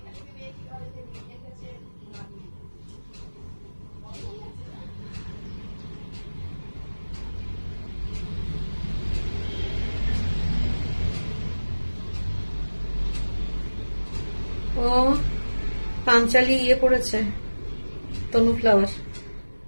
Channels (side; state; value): both; inverted; correlation -1.00